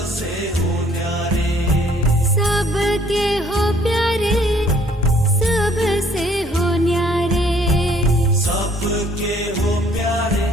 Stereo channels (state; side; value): normal; both; correlation 0.61